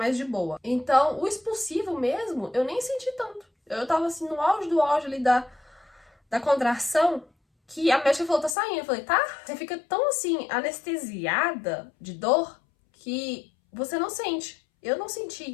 de boa. Então, o expulsivo mesmo, eu nem senti tanto. Eu tava assim, no auge do auge ali da contração, que a médica falou, tá saindo. Eu falei, tá? Você fica tão assim, anestesiada de dor, que você não sente. Eu não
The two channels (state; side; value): drops out; right; at 8.6 s